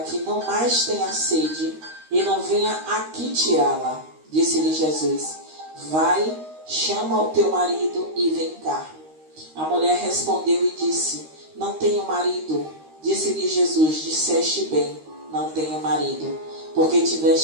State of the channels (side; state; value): left; late; 13 ms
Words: que não mais tenha sede e não venha aqui tirá-la. Disse-lhe Jesus: vai, chama o teu marido e vem cá. A mulher respondeu e disse: não tenho marido. Disse-lhe Jesus: disseste bem, não tenho marido, porque